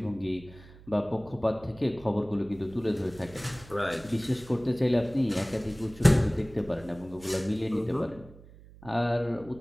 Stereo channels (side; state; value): right; noise; hum, 21 dB below the sound